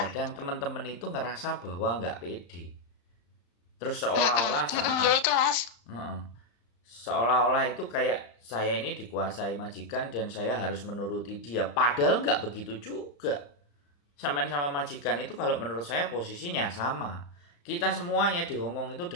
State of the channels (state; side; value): late; right; 35 ms